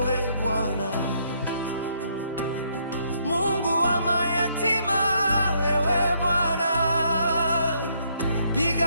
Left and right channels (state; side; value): inverted; both; correlation -0.71